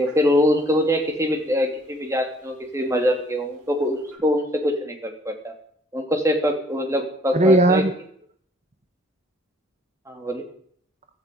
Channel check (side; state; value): both; normal; correlation 0.60